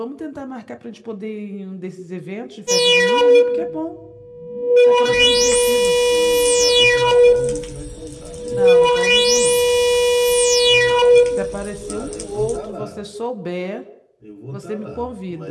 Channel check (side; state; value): both; identical; correlation 1.00